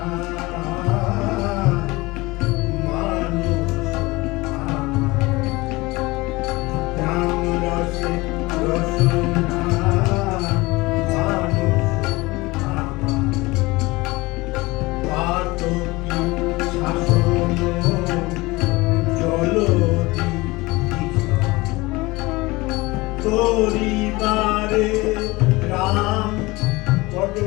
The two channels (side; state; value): right; quieter; 22.1 dB